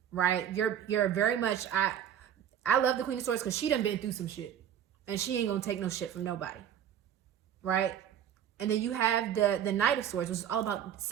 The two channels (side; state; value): left; quieter; 9.7 dB